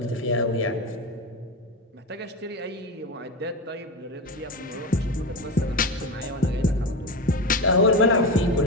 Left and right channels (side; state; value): both; normal; correlation 0.19